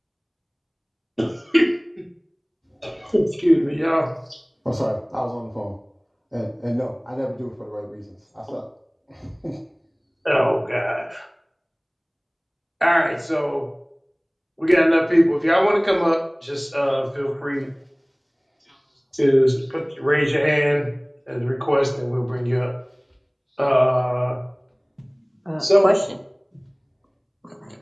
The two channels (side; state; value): both; identical; correlation 1.00